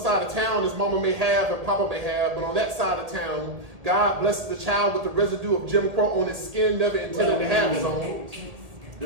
of town is mama may have and papa may have, but on that side of town, God blesses the child with the residue of Jim Crow on his skin, never intended to have his own. The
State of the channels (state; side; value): late; left; 1.7 ms